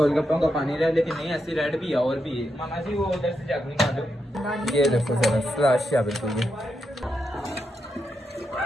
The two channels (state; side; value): normal; both; correlation 0.84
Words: का पानी रहा लेकिन नहीं ऐसी रेड भी है और भी है मामा जी वो उधर से जग निकालो ये देखो जरा स्लश है बिल्कुल ये